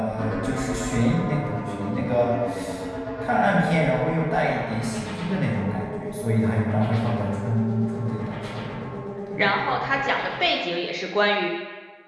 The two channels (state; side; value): identical; both; correlation 1.00